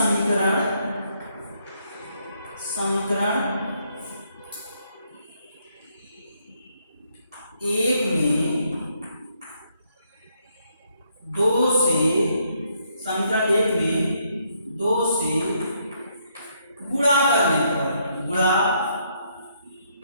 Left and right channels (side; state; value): both; inverted; correlation -0.73